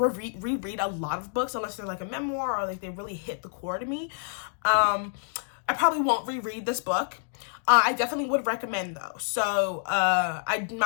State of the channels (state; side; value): silent; right; digital silence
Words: a lot of books unless they're like a memoir or like they really hit the core to me. I probably won't reread this book. I definitely would recommend though. So I'm